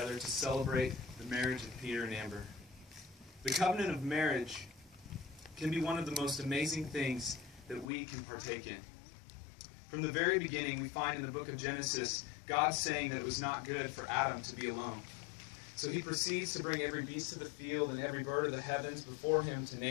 to celebrate the marriage of Peter and Amber. The covenant of marriage can be one of the most amazing things that we can partake in. From the very beginning, we find in the book of Genesis, God saying that it was not good for Adam to be alone. So he proceeds to bring every beast of the field and every bird of the heavens before him to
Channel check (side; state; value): right; drops out; at 7.9 s